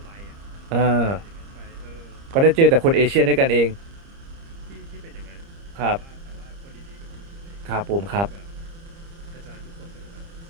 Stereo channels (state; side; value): late; left; 30 ms